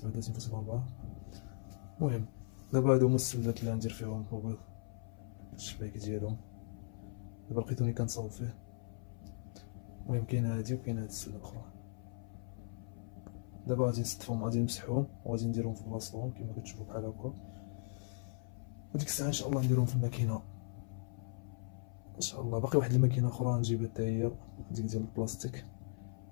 المهم دابا هادو هما السلات اللي غندير فيهم البيض، الشبايك ديالهم. دابا لقيتوني كنصاوب فيه. المهم كاينه هادي وكاينه هاد السله الاخرى. دابا غادي نستفهم، غادي نمسحهم وغادي نديرهم في بلاصتهم كما كتشوفوا بحال هكا. وديك الساعه ان شاء الله نديرهم في الماكينه ان شاء الله. باقي واحد الماكينه اخرى نجيبها حتى هي، ديك ديال البلاستيك.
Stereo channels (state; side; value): silent; right; 52 dB below the other